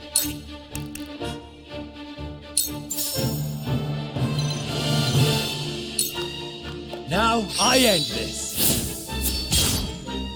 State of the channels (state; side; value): identical; both; correlation 1.00